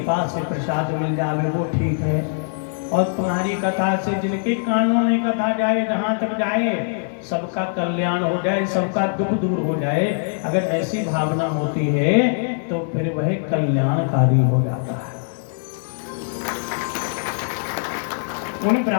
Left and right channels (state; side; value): silent; right; digital silence